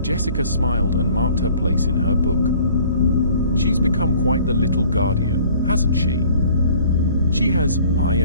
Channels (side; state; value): both; inverted; correlation -0.52